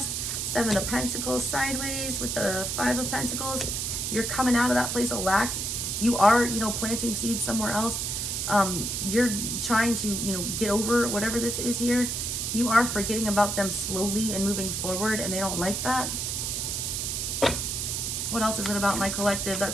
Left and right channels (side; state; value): right; noise; hiss, 2 dB below the sound